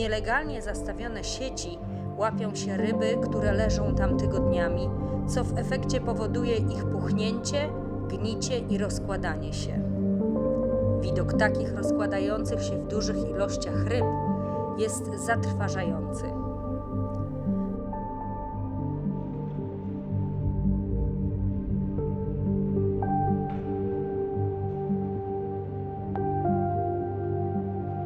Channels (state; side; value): identical; both; correlation 1.00